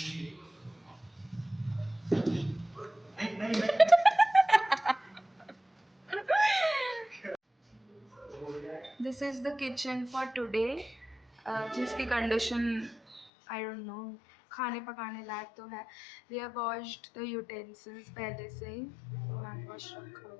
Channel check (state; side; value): drops out; right; at 13.2 s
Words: This is the kitchen for today, जिसकी कंडीशन आई डोंट नो, खाने पकाने लायक तो है। We have washed the utensils पहले से ही, तो हैंड वॉश रखा